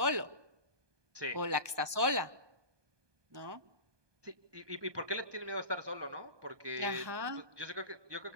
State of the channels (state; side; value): late; left; 1.2 ms